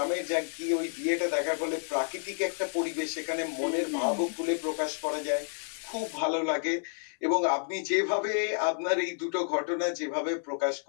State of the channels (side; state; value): right; silent; 58 dB below the other